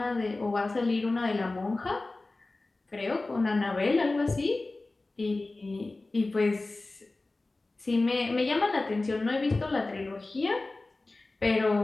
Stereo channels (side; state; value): right; quieter; 3.2 dB